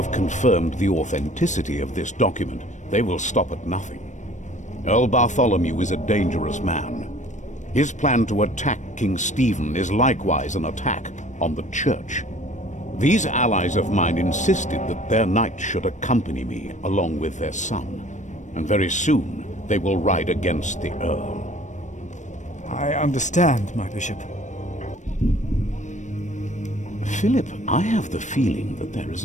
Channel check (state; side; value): late; right; 0.35 ms